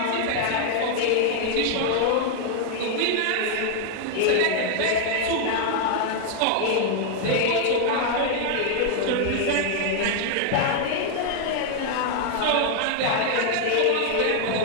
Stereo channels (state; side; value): different; both; correlation 0.00